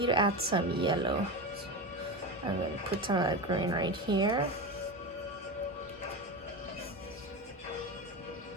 to add some yellow. So I'm gonna put some of that green right here.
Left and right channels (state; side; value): normal; both; correlation 0.21